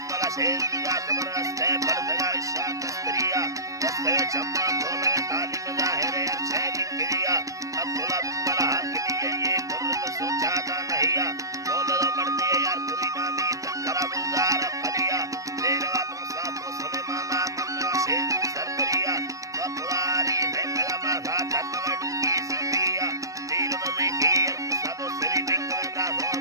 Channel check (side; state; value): left; late; 0.16 ms